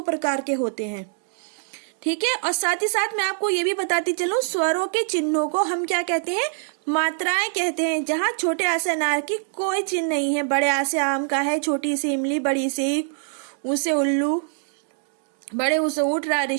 प्रकार के होते हैं। ठीक है, और साथ ही साथ मैं आपको ये भी बताती चलूं, स्वरों के चिन्हों को हम क्या कहते हैं? मात्राएं कहते हैं। जहाँ छोटे आ से अनार की कोई चिन्ह नहीं है, बड़े आ से आम का है, छोटी से इमली, बड़ी से ऊ से उल्लू, बड़े ऊ से ऊंट, रा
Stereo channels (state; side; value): silent; left; digital silence